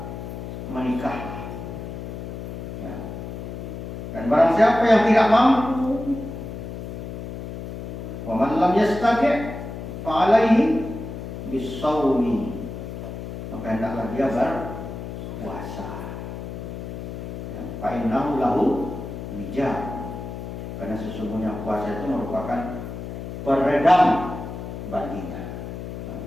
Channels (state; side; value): noise; left; hum, 8 dB below the sound